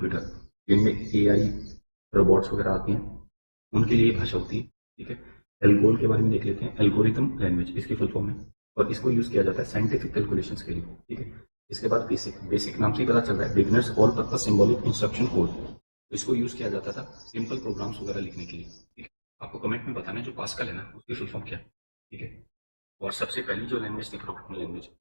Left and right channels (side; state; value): both; inverted; correlation -1.00